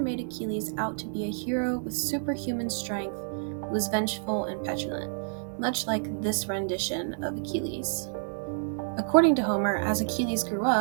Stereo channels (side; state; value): left; silent; digital silence